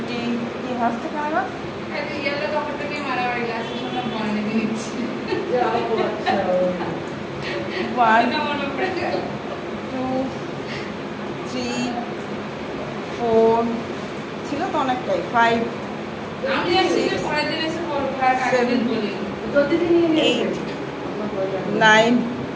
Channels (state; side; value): identical; both; correlation 1.00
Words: কি হাসতে পারবা ইয়েলো কাপড়টাকে মারামারি গ্লাসের সামনে বানিয়ে দিচ্ছি 1 2 3 4 ছিল তো অনেকটাই 5 আমি জানি যে পরের দিন এসে করব আর আগের দিন বলি 8 9